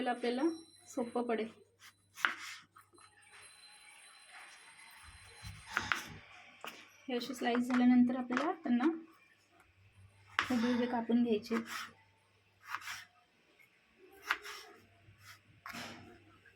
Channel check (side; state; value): both; identical; correlation 1.00